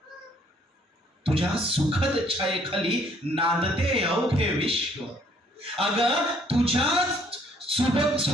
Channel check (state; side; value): normal; both; correlation 0.63